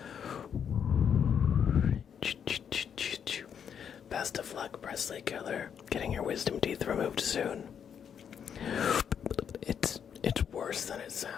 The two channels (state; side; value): quieter; right; 7.9 dB